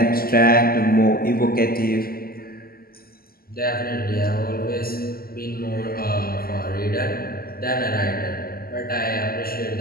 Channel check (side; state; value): right; late; 0.43 ms